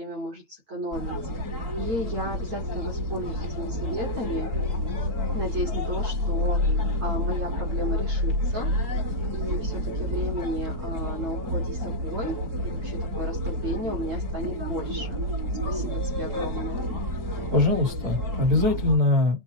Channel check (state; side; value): late; left; 8.5 ms